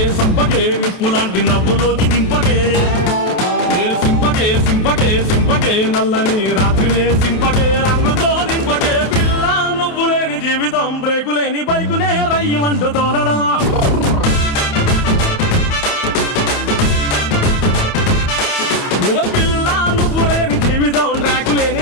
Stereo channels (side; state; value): right; late; 28 ms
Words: సంపకే నిప్పు లాంటి నవ్వులోకి దింపకే సింపకే సింపకే సింపకే నల్లని రాత్రినే సింపకే రంగుతో నింపకే పిల్ల నువ్వు లేని జీవితం బ్రేకు లేని బైకునే రయ్యమంటూ తోలడా పిల్ల నువ్వు లేని జీవితం ట్రాకు లేని